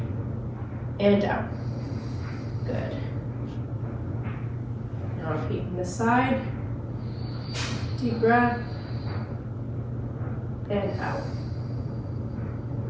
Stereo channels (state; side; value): identical; both; correlation 1.00